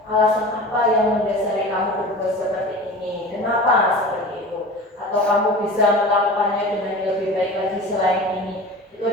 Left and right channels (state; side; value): normal; both; correlation 0.35